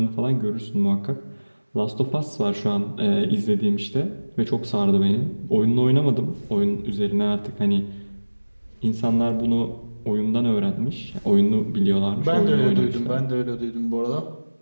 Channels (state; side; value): inverted; both; correlation -1.00